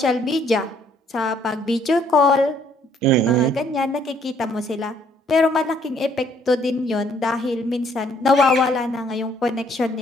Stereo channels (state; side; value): normal; both; correlation 0.64